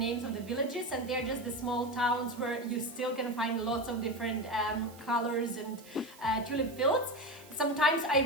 of the villages, and they're just the small towns where you still can find lots of different colors and tulip fields. Sometimes I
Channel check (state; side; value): noise; right; hiss, 22 dB below the sound